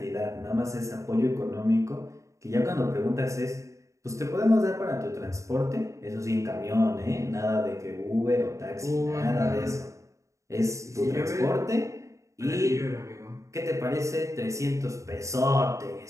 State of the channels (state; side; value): late; left; 0.15 ms